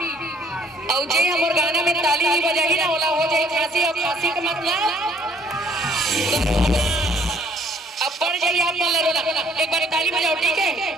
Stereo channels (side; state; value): both; normal; correlation 0.62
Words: और जे हमर गाना में ताली नहीं बजाई ना ओला हो जाए खांसी। और खांसी का मतलब अब बढ़ जाइए आप। एक बार ताली बजाओ, ठीक है?